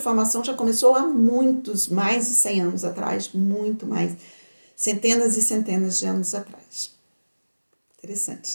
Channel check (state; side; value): inverted; both; correlation -1.00